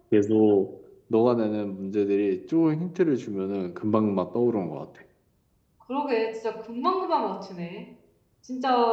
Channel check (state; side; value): identical; both; correlation 1.00